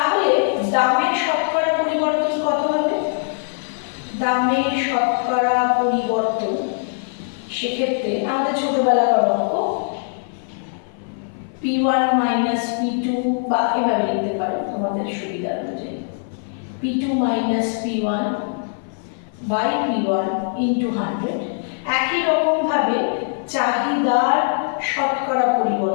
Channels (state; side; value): silent; right; 57 dB below the other